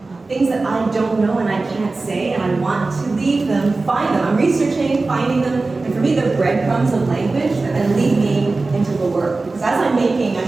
things that I don't know and I can't say, and I want to leave them, find them. I'm researching, finding them, and for me they're breadcrumbs of language that then lead me into the work. Because as I'm making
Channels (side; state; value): left; quieter; 3.5 dB